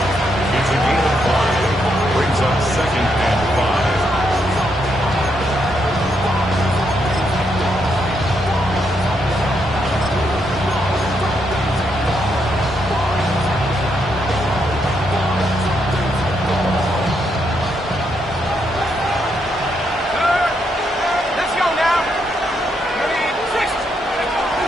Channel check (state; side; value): normal; both; correlation 0.78